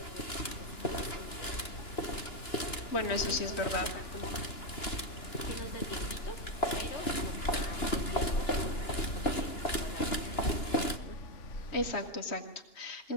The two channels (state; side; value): late; right; 2.9 ms